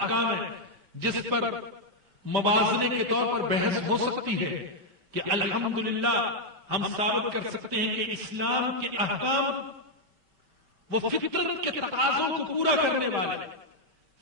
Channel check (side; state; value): left; late; 5.1 ms